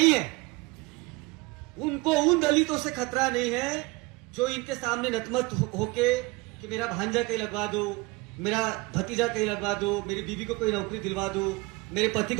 है, उनको उन दलितों से खतरा नहीं है जो इनके सामने नतमत होके कि मेरा भांजा कहीं लगवा दो, मेरा भतीजा कहीं लगवा दो, मेरी बीवी को कोई नौकरी दिलवा दो, मेरे पति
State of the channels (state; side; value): quieter; left; 23.9 dB